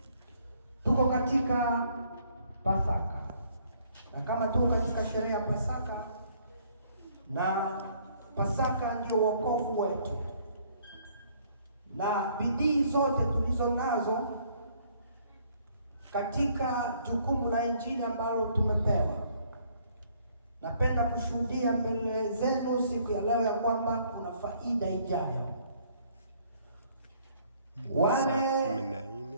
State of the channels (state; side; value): inverted; both; correlation -0.63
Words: Tuko katika Pasaka, na kama tuko katika sherehe ya Pasaka, na Pasaka ndio wokovu wetu, na bidii zote tulizo nazo katika jukumu la Injili ambalo tumepewa, napenda kushuhudia mbele zenu siku ya leo ya kwamba kuna faida ijayo. Wale